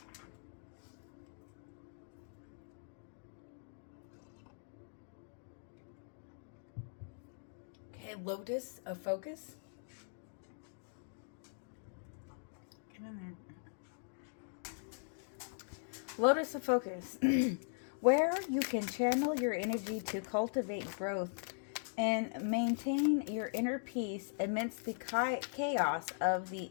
Okay, Lotus of Focus. Lotus of Focus. Where you can channel your energy to cultivate growth and maintain your inner peace amidst the chaos of the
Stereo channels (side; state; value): right; silent; digital silence